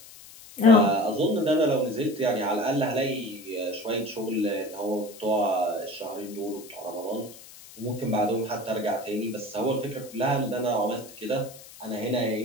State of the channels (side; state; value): left; noise; hiss, 19 dB below the sound